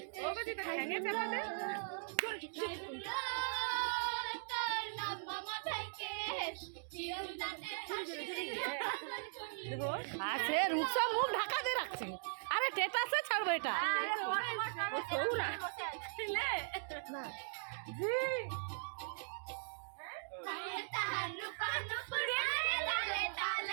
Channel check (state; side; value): silent; left; digital silence